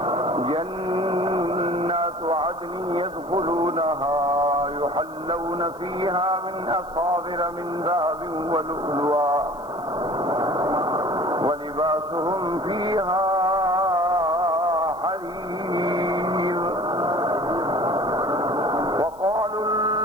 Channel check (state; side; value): noise; left; hiss, 28 dB below the sound